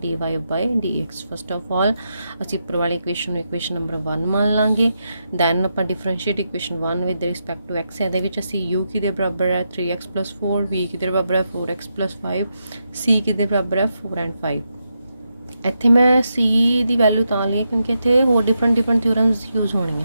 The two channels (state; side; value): inverted; both; correlation -0.85